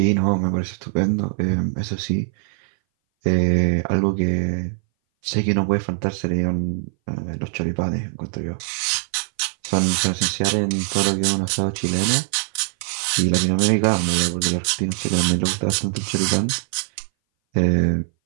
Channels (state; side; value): silent; left; 60 dB below the other